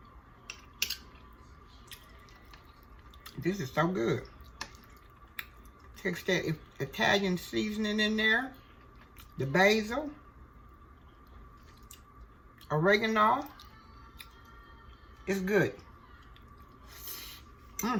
This is so good. Takes that Italian seasoning in there. The basil. Oregano. It's good.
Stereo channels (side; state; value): both; identical; correlation 1.00